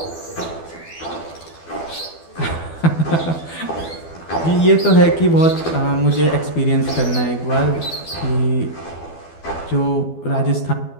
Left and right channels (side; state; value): right; late; 12 ms